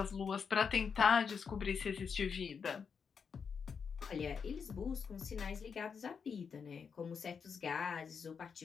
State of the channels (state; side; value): quieter; right; 6.2 dB